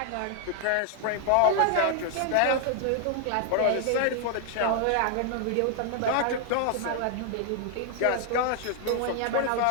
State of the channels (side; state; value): both; different; correlation 0.00